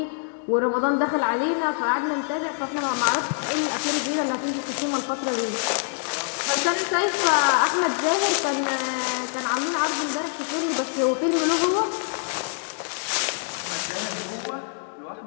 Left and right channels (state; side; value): silent; right; digital silence